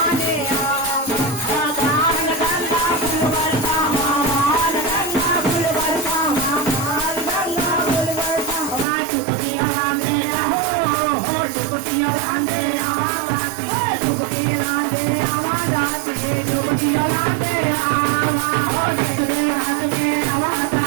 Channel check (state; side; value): drops out; left; at 8.8 s